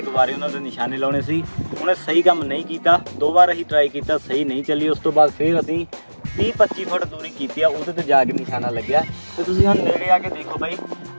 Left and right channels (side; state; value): both; inverted; correlation -1.00